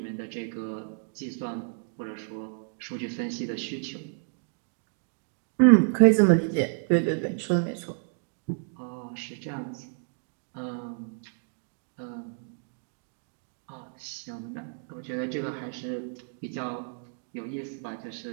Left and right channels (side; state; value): left; silent; 58 dB below the other